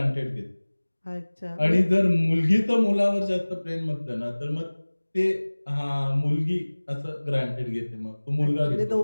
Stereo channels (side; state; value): both; inverted; correlation -1.00